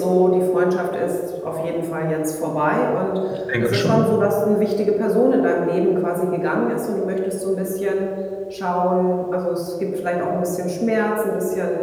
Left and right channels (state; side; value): identical; both; correlation 1.00